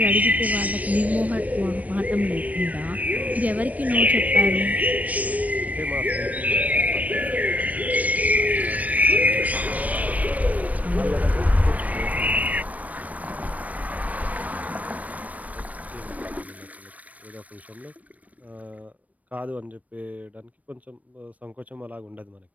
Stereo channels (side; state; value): left; late; 0.071 ms